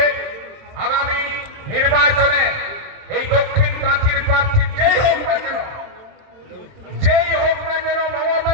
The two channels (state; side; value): late; left; 27 ms